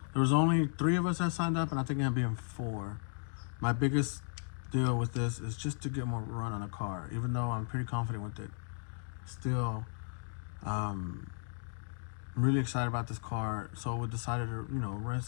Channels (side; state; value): right; silent; digital silence